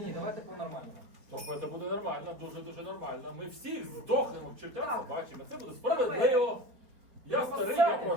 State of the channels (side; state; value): left; late; 4.5 ms